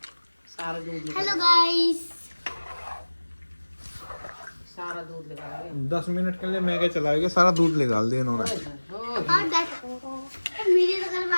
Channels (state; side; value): inverted; both; correlation -1.00